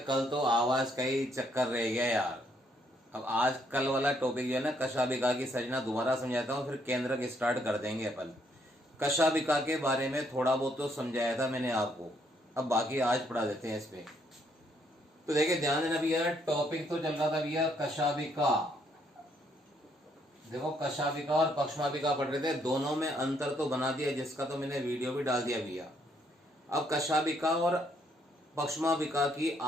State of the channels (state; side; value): normal; both; correlation 0.71